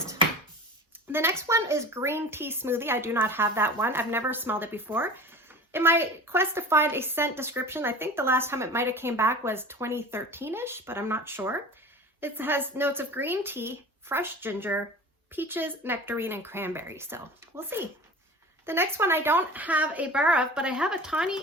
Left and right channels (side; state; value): both; normal; correlation 0.37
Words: The next one is Green Tea Smoothie. I do not have that one. I've never smelled it before. In my quest to find a scent description, I think the last time it might have came back was 2013-ish, but I'm not sure. It has notes of green tea, fresh ginger, peaches, nectarine, and cranberry. So we'll see. The next one I don't have a bar of, but I have a